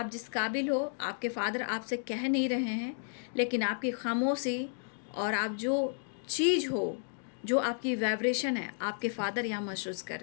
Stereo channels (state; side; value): silent; right; digital silence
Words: जिस काबिल हो आपके फादर आपसे कह नहीं रहे हैं, लेकिन आपकी खामोशी और आप जो चीज़ हो, जो आपकी वाइब्रेशन है, आपके फादर यहाँ महसूस कर